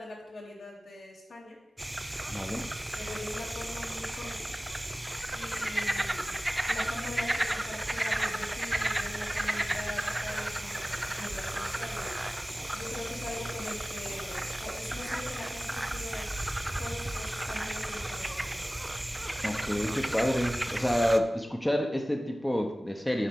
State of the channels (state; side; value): normal; both; correlation 0.97